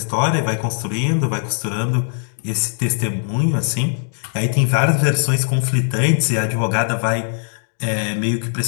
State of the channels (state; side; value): silent; right; digital silence